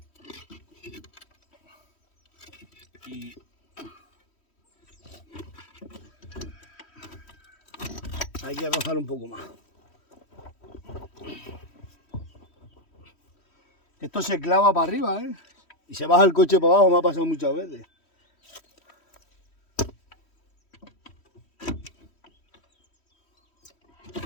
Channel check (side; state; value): right; late; 3.1 ms